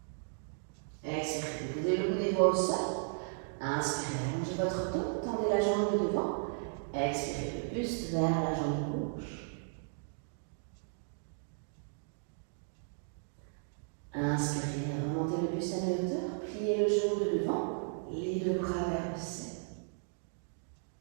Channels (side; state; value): left; silent; digital silence